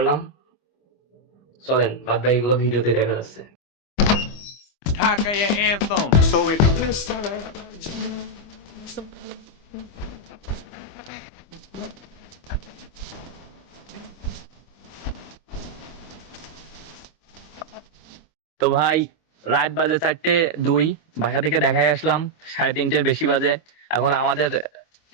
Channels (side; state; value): right; late; 25 ms